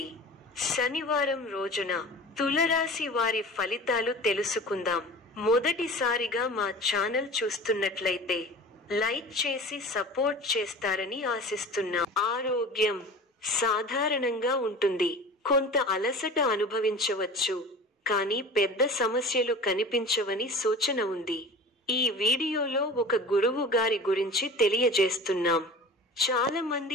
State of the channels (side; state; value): both; normal; correlation 0.38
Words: శనివారం రోజున తులరాశి వారి ఫలితాలు తెలుసుకుందాం. మొదటిసారిగా మా ఛానల్ చూస్తున్నట్లయితే లైక్ చేసి సపోర్ట్ చేస్తారని ఆశిస్తున్నాం. ఆరోగ్యం సాధారణంగా ఉంటుంది. కొంత అలసట అనుభవించవచ్చు, కానీ పెద్ద సమస్యలు కనిపించవని సూచన ఉంది. ఈ వీడియోలో ఒక గురువు గారి గురించి తెలియజేస్తున్నాం. చాలా